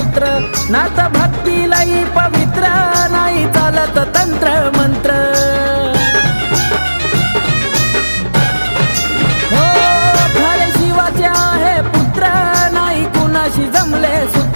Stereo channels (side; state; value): both; inverted; correlation -1.00